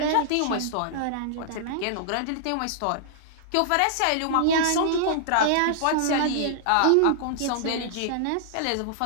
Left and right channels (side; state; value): both; different; correlation -0.01